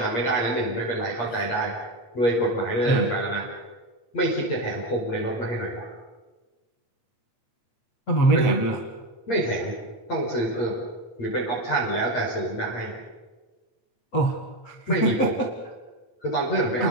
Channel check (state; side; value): late; right; 8.5 ms